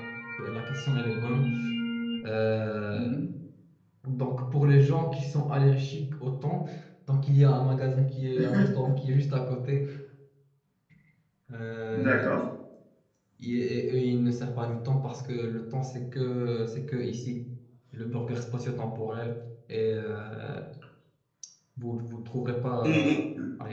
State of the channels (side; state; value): both; identical; correlation 1.00